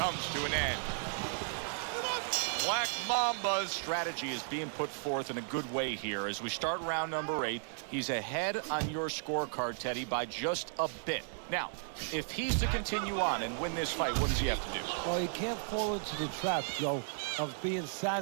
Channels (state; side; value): silent; left; 55 dB below the other